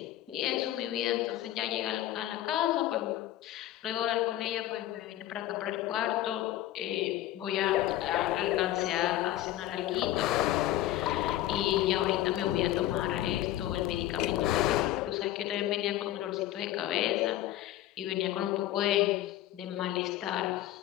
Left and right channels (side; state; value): right; quieter; 14.1 dB